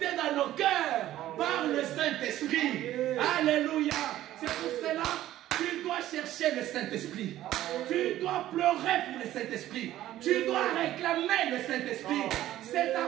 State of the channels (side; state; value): left; quieter; 13.8 dB